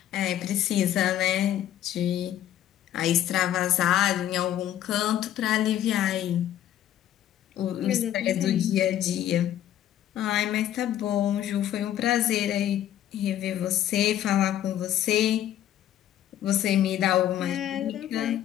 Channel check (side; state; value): right; quieter; 11.7 dB